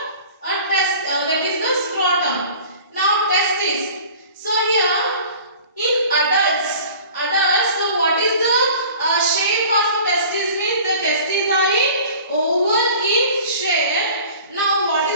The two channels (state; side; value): inverted; both; correlation -0.45